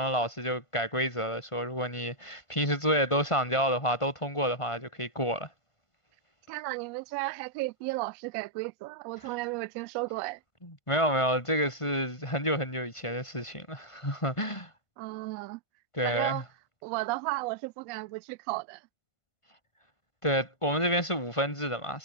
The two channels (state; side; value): late; right; 1.5 ms